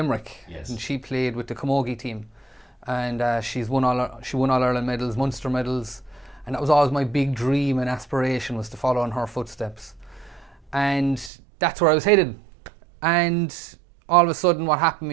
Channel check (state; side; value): drops out; left; at 11.3 s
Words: Yes. And she played with the Camogie team. And she won All-Ireland medals, Munster medals. And that was always my big dream and aspiration, was to follow in her footsteps. And that's where I was headed. And all of a sudden what happened to